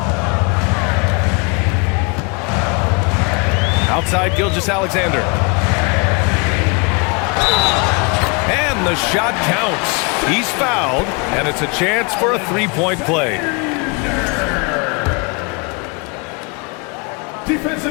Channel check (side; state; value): right; quieter; 31.6 dB